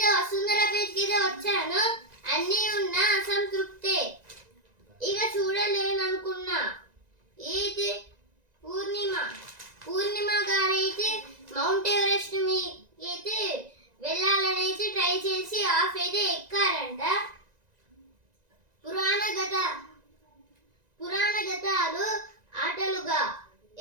వసుంధర పేజ్కి అయితే వచ్చాను, అన్నీ ఉన్న అసంతృప్తే. ఇక చూడలేననుకున్నా అయితే పూర్ణిమ గారైతే మౌంట్ ఎవరెస్ట్ అయితే వెళ్ళాలని అయితే ట్రై చేసి ఆఫ్ అయితే ఎక్కారంట. పురాణ గతాలు ఆటలుగా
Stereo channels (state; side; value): late; left; 1.9 ms